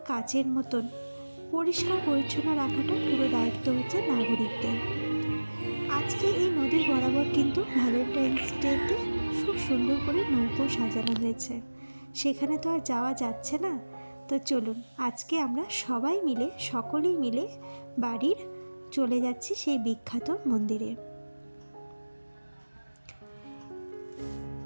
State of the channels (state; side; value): inverted; both; correlation -1.00